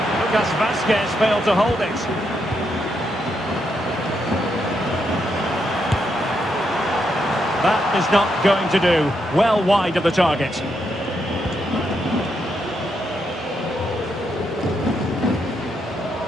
Lucas Vazquez failed to hold it. That is not going to do. Well wide of the target.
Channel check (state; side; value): normal; both; correlation 0.80